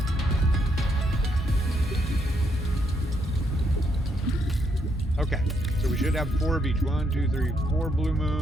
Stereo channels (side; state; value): both; normal; correlation 0.75